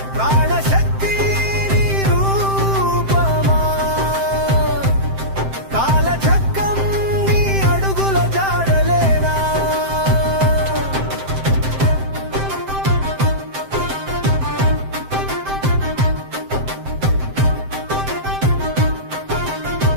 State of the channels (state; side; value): late; left; 7.7 ms